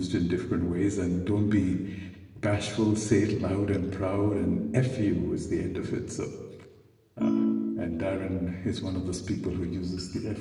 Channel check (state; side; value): identical; both; correlation 1.00